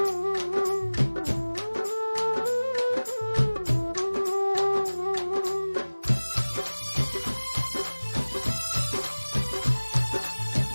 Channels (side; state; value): both; inverted; correlation -1.00